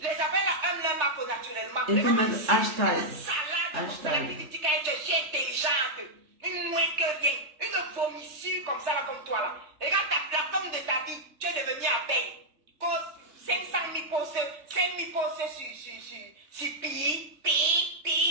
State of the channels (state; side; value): late; left; 3.4 ms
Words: là aiment leur marque naturellement. Et vous mettez hashtag. Une salade comme ça là qui dit qu'elle est intelligente. Une moins que rien. Une vomissure comme ça là comme toi là. Regarde la femme de ta vie. Tu es devenu abeille. Cause 500 000 postes sur pi.